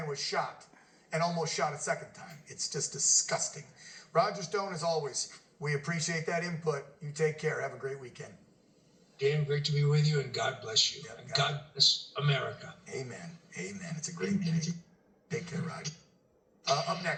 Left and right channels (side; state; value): both; identical; correlation 1.00